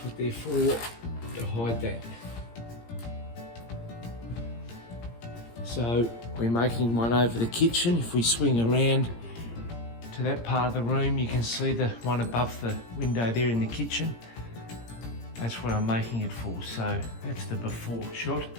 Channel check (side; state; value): right; late; 17 ms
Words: what they're for, to hide that. So we're making one over the kitchen. If we swing around to that part of the room, you can see the one above the window there in the kitchen. That's what I'm making it for, so that's the before shot.